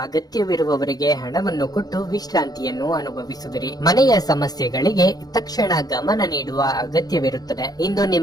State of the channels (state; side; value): late; right; 0.19 ms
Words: ಅಗತ್ಯವಿರುವವರಿಗೆ ಹಣವನ್ನು ಕೊಟ್ಟು ವಿಶ್ರಾಂತಿಯನ್ನು ಅನುಭವಿಸುವಿರಿ. ಮನೆಯ ಸಮಸ್ಯೆಗಳಿಗೆ ತಕ್ಷಣ ಗಮನ ನೀಡುವ ಅಗತ್ಯವಿರುತ್ತದೆ. ಇಂದು